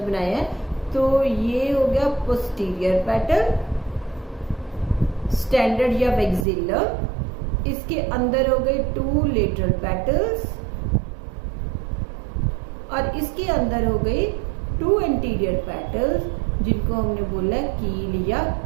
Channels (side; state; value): left; drops out; at 6.5 s